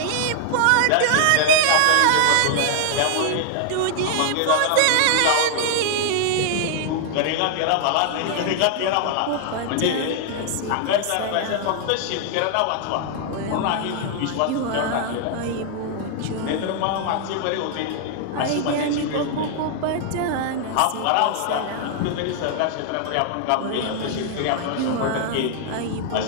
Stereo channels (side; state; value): both; different; correlation -0.01